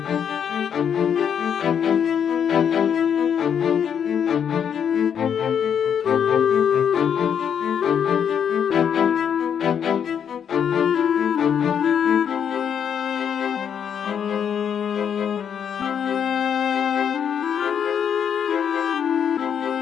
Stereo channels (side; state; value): right; quieter; 8.0 dB